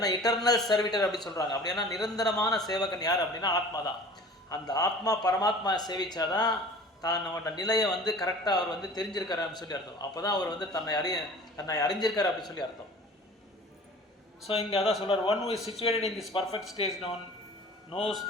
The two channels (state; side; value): normal; both; correlation 0.43